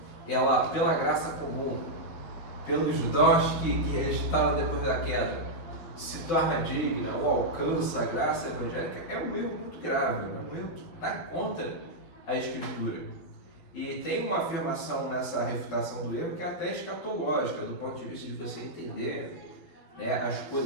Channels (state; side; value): late; right; 12 ms